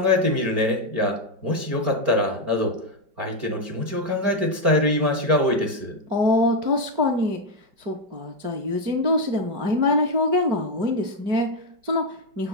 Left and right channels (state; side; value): late; left; 5.1 ms